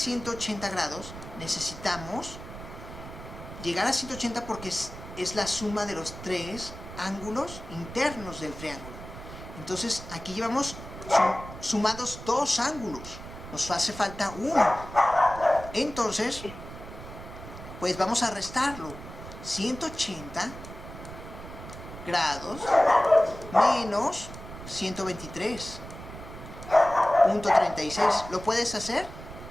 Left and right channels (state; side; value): noise; right; rumble, 13 dB below the sound